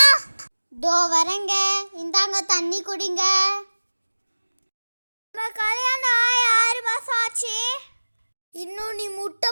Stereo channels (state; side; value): inverted; both; correlation -1.00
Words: தோ வரங்க, இந்தாங்க தண்ணி குடிங்க. நம்ம கல்யாணம் ஆகி 6 மாசம் ஆச்சு, இன்னும் நீ முட்டை